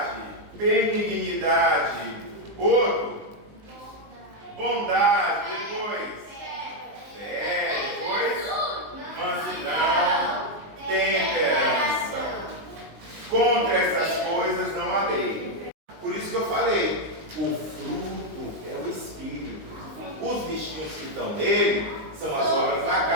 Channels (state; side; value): late; left; 19 ms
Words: benignidade. Outro, bondade. Depois, depois, mansidão, temperança. Contra essas coisas não há lei. Por isso que eu falei, o fruto é o Espírito. Os bichinhos que estão nele são as obras da